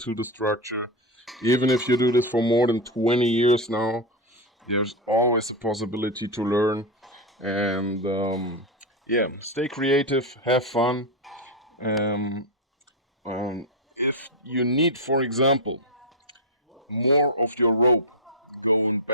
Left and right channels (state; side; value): normal; both; correlation 0.08